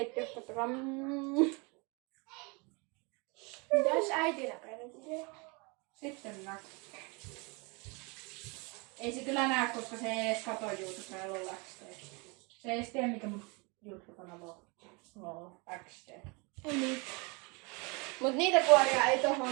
katsokaa. Mitäs äiti näkee? Sitten näkyy. Ei se kyllä näe, koska se ei edes kato YouTubea ja LOL XD. Se ei edes tiedä, mikä mun YouTube-kanava on. LOL XD. Ei niin. Mut niitä kuoria ei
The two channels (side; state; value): left; quieter; 29.6 dB